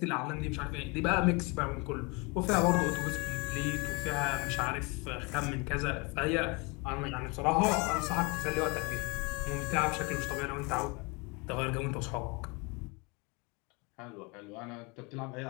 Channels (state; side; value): quieter; right; 29.0 dB